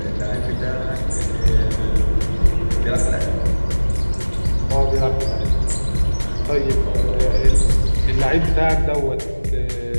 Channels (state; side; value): inverted; both; correlation -1.00